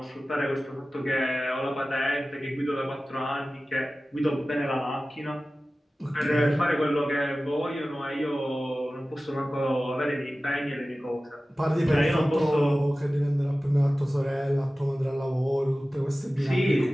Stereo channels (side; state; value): both; normal; correlation 0.96